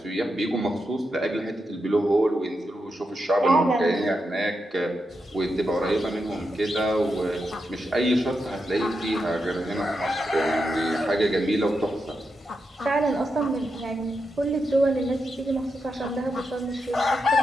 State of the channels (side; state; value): both; normal; correlation 0.86